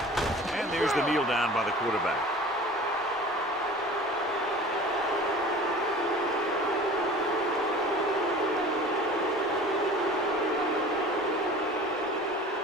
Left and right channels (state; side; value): normal; both; correlation 0.41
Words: And there's the kneel down by the quarterback.